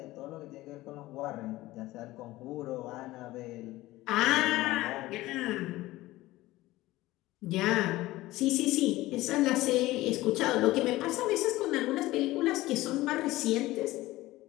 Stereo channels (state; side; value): quieter; right; 17.8 dB